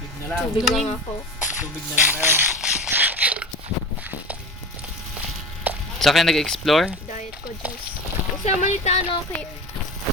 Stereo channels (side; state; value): both; normal; correlation 0.32